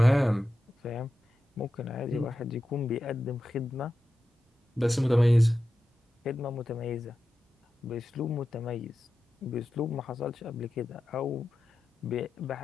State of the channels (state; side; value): normal; both; correlation 0.92